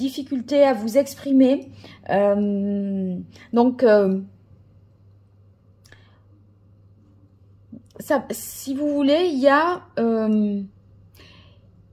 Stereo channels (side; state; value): both; identical; correlation 1.00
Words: à vous exprimer. Si vous voulez, il y a